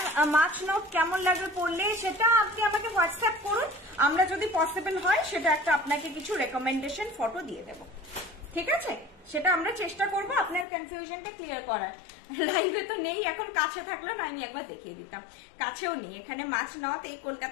মাছ নথ কেমন লাগবে পড়লে সেটা আপনি আমাকে হোয়াটসঅ্যাপ করুন, আমরা যদি পসিবল হয় সেটা একটা আপনাকে কিছু রেকমেন্ডেশন ফটো দিয়ে দেব, ঠিক আছে? সেটা আমরা চেষ্টা করব আপনার কনফিউশনটা ক্লিয়ার করার। লাইভে তো নেই এখন, কাছে থাকলো না আমি একবার দেখিয়ে দিতাম, কাছেও নেই, এখানে মাছ নথ এই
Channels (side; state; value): right; drops out; at 10.7 s